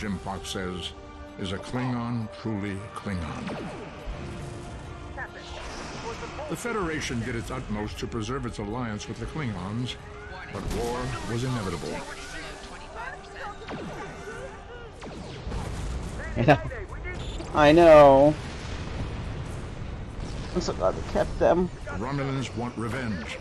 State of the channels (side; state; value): both; identical; correlation 1.00